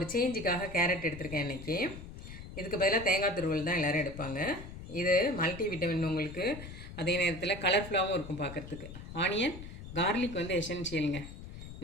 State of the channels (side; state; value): left; noise; rumble, 12 dB below the sound